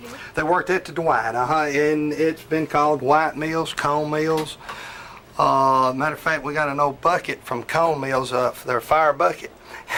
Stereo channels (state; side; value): identical; both; correlation 1.00